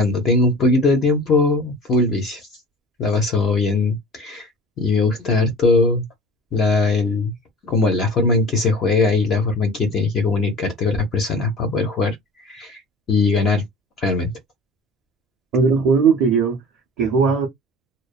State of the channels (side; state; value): both; normal; correlation 0.41